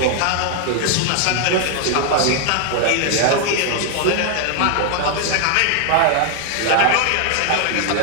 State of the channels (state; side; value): different; both; correlation 0.00